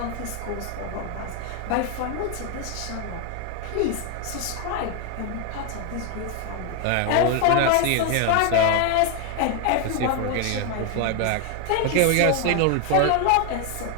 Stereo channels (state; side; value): different; both; correlation 0.01